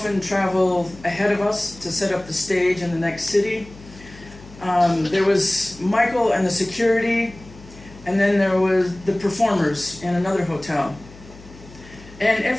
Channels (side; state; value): left; noise; hum, 20 dB below the sound